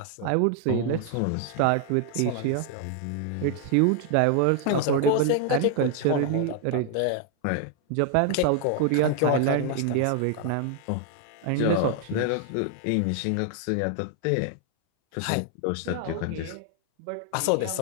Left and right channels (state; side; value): different; both; correlation 0.00